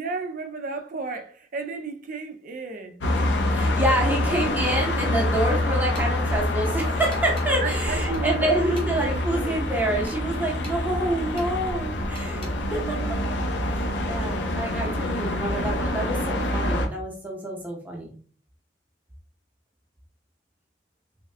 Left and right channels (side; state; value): both; normal; correlation 0.53